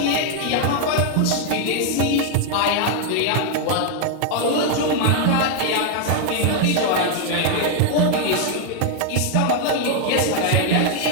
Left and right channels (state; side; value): different; both; correlation 0.00